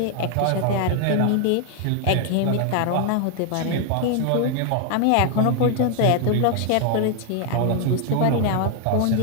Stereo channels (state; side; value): different; both; correlation 0.00